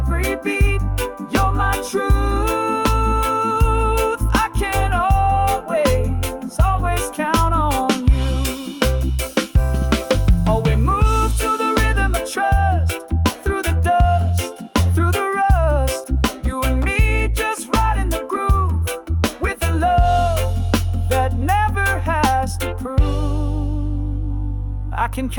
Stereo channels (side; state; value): both; identical; correlation 1.00